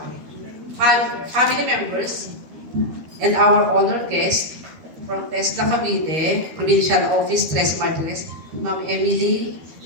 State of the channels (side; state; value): left; late; 13 ms